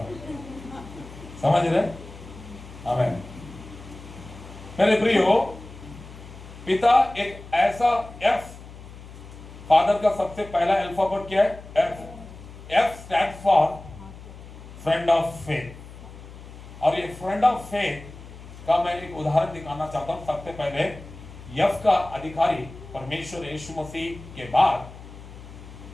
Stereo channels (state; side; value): noise; left; hum, 16 dB below the sound